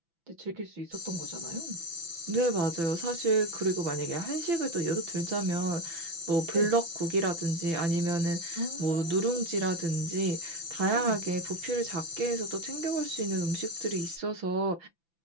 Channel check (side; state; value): left; late; 5.9 ms